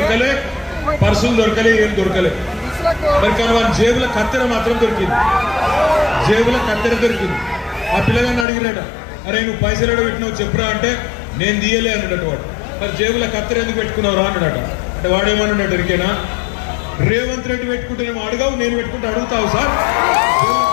పర్సులు దొరకలే, ఏం దొరకలే. మరి కానీ వాని జేబుల కత్తెర మాత్రం దొరికింది, జేబుల కత్తెర దొరికింది. ఆ పిల్లగాన్ని అడిగినట, అరే నువ్వు పైసలు ఎడ పెట్టినావు చెప్పురా అంటే, నేను తీయలే అన్నాడట వాడు. మరి జేబుల కత్తెర ఎందుకు పెట్టుకున్నావు రా అన్నాడట. అంటే వాడేమన్నాడు ఎరికేనా, రేవంత్ రెడ్డి పెట్టుకుంటేనేమో అడగావు, నేను పెట్టుకుంటే అడుగుతావు సార్,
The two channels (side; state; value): right; drops out; at 8.5 s